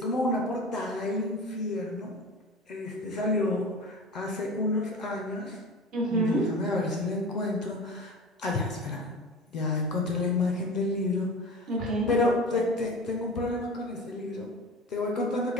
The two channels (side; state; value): both; normal; correlation 0.34